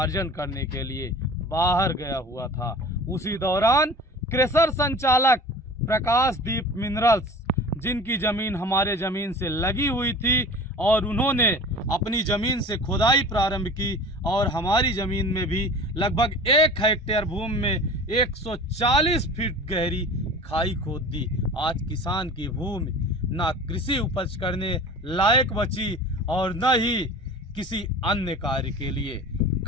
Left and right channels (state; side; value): normal; both; correlation 0.40